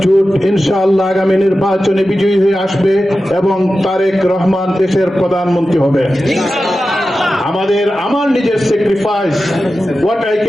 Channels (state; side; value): normal; both; correlation 0.93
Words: জোট ইনশাআল্লাহ আগামী নির্বাচনে বিজয়ী হয়ে আসবে এবং তারেক রহমান দেশের প্রধানমন্ত্রী হবে। আমার নিজের sacrifice, what I